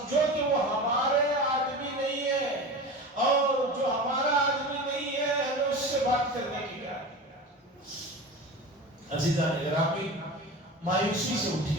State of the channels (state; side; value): normal; both; correlation 0.30